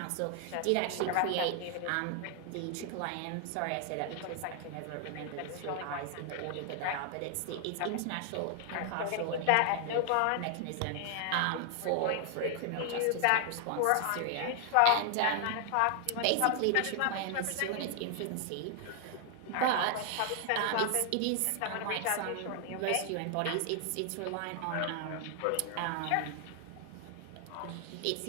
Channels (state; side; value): different; both; correlation 0.00